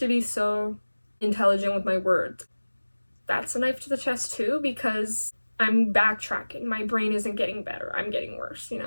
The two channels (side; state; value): both; inverted; correlation -1.00